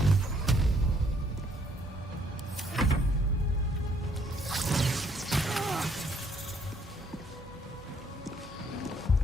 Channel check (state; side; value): normal; both; correlation 0.67